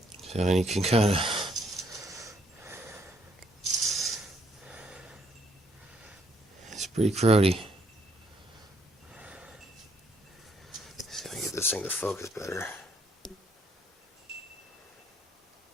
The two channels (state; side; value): normal; both; correlation 0.70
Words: So you can kind of it's pretty cruddy. See if I can get this thing to focus better.